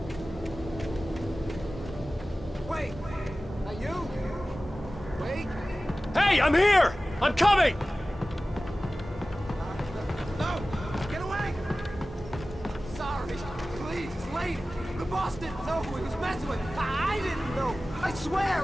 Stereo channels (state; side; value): normal; both; correlation 0.96